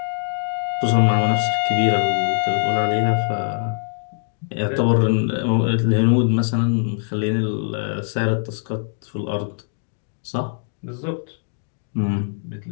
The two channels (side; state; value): right; silent; digital silence